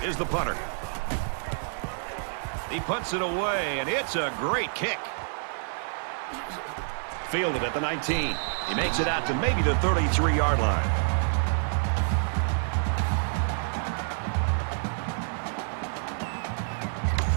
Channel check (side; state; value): left; silent; digital silence